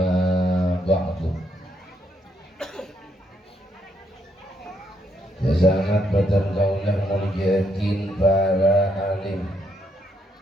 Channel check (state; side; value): normal; both; correlation 0.75